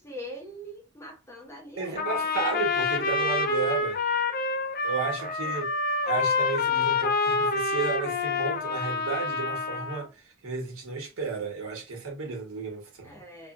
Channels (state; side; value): normal; both; correlation -0.16